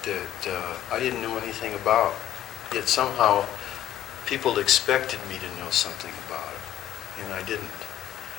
that I didn't know anything about. Yet somehow people expected me to know something about it, and I didn't.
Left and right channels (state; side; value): quieter; right; 12.1 dB